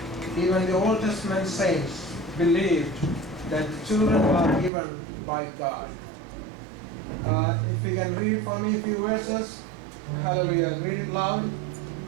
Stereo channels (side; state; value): left; drops out; at 4.7 s